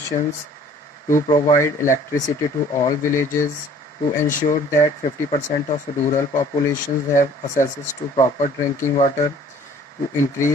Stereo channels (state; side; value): normal; both; correlation 0.53